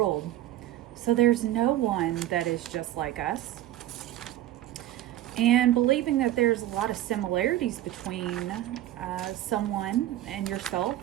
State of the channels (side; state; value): left; quieter; 13.9 dB